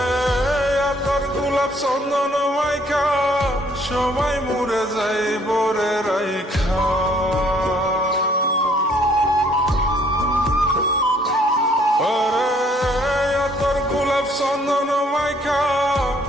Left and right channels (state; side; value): normal; both; correlation 0.63